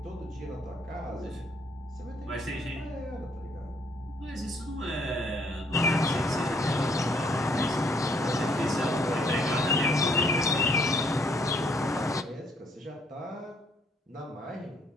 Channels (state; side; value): normal; both; correlation 0.66